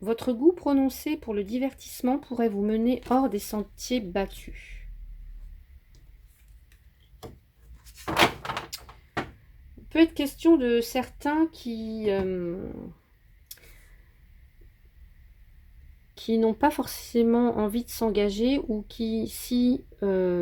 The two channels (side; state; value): both; identical; correlation 1.00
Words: goût prononcé pour le divertissement pourrait vous mener hors des sentiers battus. Il peut être question de certains qui n'ont pas forcément envie de s'engager, ou qui, si